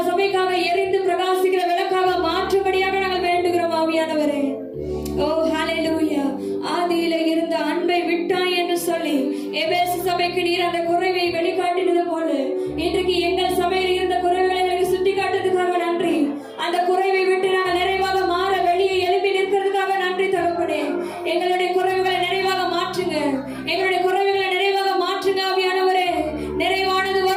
சபைக்காக எரிந்து பிரகாசிக்கிற விளக்காக மாற்றும்படியாக நாங்கள் வேண்டுகிறோம் ஆவியானவரே. ஓ ஹalleluya. ஆதியில இருந்த அன்பை விட்டாய் என்று சொல்லி எபேசு சபைக்கு நீர் அந்த குறைவை வெளிக்காட்டினது போல இன்றைக்கு எங்கள் சபையில் இருந்த குறைகளை எங்களுக்கு சுட்டி காட்டுறதுக்காக நன்றி. அந்த குறைவை விட்டு நாங்கள் நிறைவாக மாற வெளியே எழுப்பி நிற்கிறதுக்காக நன்றி தகப்பனே. எங்களுடைய குறைவுகளை நிறைவாக மாற்றுங்க. எங்களுடைய குறைவுகளை நிறைவாக மாற்றுங்க ஆவியானவரே. நிறைவானது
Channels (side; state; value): both; identical; correlation 1.00